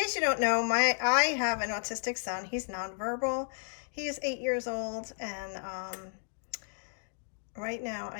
you don't know, I have an autistic son. He's nonverbal. He is 8 years old, and right now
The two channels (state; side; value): silent; right; digital silence